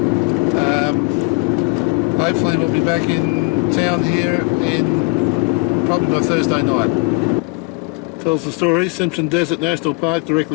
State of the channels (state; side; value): quieter; right; 30.4 dB